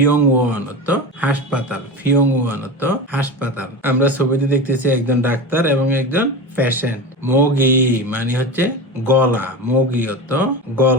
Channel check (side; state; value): both; normal; correlation 0.25